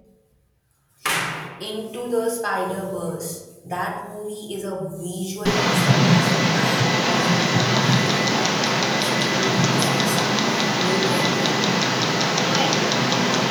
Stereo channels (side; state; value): both; identical; correlation 1.00